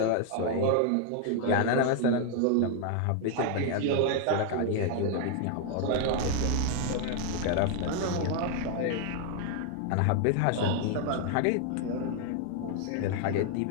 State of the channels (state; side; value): different; both; correlation 0.00